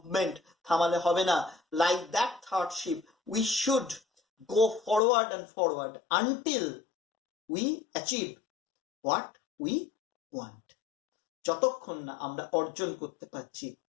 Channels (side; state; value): right; drops out; at 5.0 s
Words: থামালে হবে না। Like that third ship we should go forward and forward until we achieve what we want. যতক্ষণ না আমরা অর্জন করতে পারছি